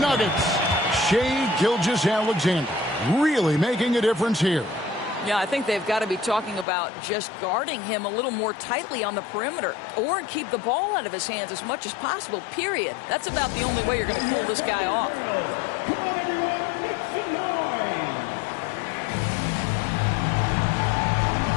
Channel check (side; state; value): right; drops out; at 6.7 s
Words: Shai Gilgeous-Alexander really making a difference here. Yeah, I think they've got to be talking about just guarding him a little more tightly on the perimeter or keep the ball out of his hands as much as possible, period. That's about the only way you're going to cool this guy off. Come on, everyone, make some noise.